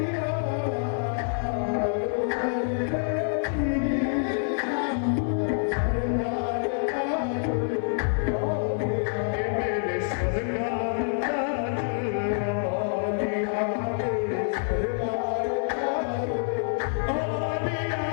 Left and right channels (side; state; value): right; silent; digital silence